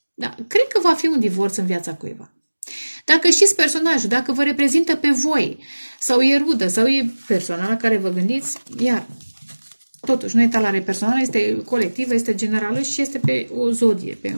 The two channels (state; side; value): inverted; both; correlation -1.00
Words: cred că va fi un divorț în viața cuiva. Dacă știți personajul, dacă vă reprezintă pe voi, sau e rudă, sau e persoana la care vă gândiți, iar, totuși, nu e talare personală, este colectivă, este generală și este pe o zodie, pe